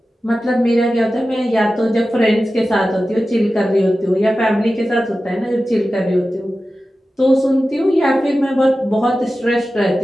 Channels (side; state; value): both; normal; correlation 0.94